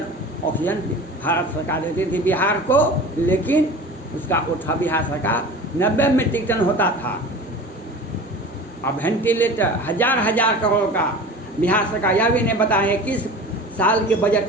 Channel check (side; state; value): both; normal; correlation 0.37